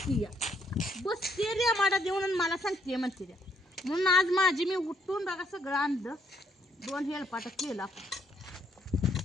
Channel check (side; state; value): both; normal; correlation 0.71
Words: बसते रे माडा देऊन मला सांगते म्हणते रे. म्हणून आज माझी मी उठून बघा सगळं आणलं. 2 हेलपाट केला.